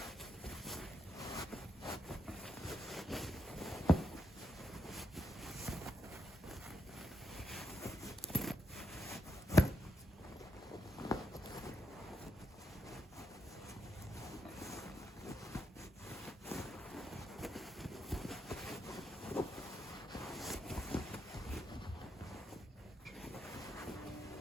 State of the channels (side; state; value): both; normal; correlation 0.81